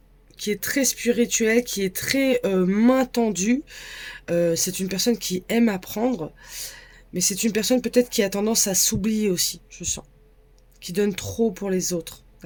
qui est très spirituelle, qui est très main tendue. C'est une personne qui aime apprendre, mais c'est une personne peut-être qui a tendance à s'oublier aussi, je sens, qui donne trop pour les autres.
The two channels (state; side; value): identical; both; correlation 1.00